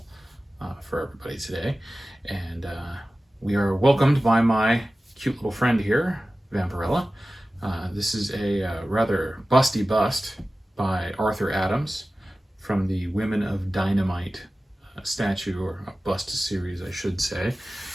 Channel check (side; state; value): both; normal; correlation 0.96